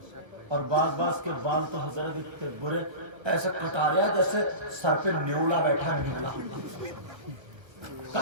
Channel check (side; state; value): left; late; 1.3 ms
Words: اور بعض کے بال تو حضرت اتنے برے, ایسے کٹا رہا جیسے سر پہ نیولا بیٹھا, نیولا,